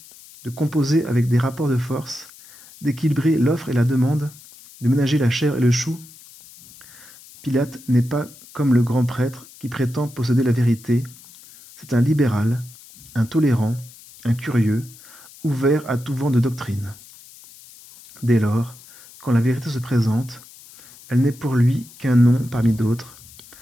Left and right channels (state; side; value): noise; left; hiss, 21 dB below the sound